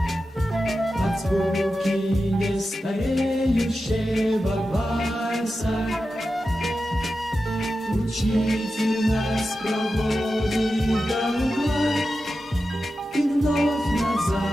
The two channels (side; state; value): both; normal; correlation 0.91